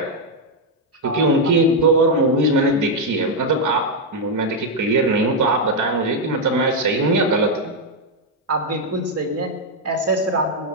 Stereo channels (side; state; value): both; normal; correlation 0.01